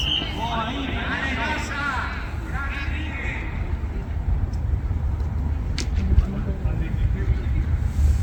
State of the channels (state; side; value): identical; both; correlation 1.00